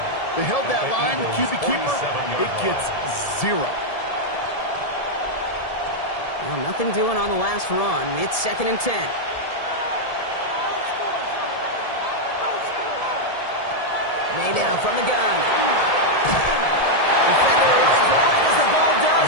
They held that line, the QB keeper, it gets 0. Well, nothing doing on the last run. It's 2nd and 10. May now from the gun. Defender runs right as the ball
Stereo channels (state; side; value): late; right; 1.7 ms